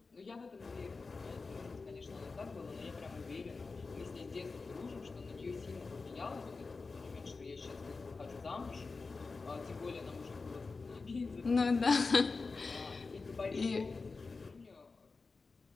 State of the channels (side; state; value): right; quieter; 4.2 dB